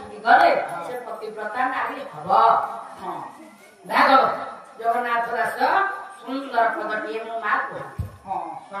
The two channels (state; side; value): identical; both; correlation 1.00